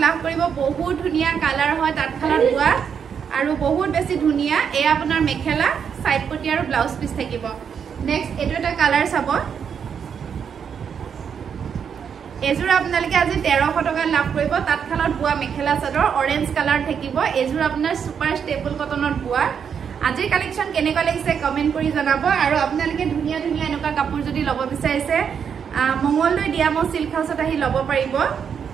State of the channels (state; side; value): quieter; left; 7.3 dB